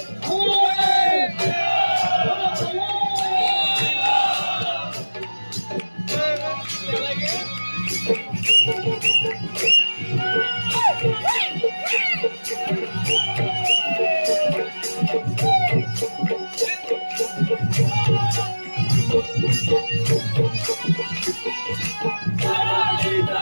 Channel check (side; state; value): both; inverted; correlation -1.00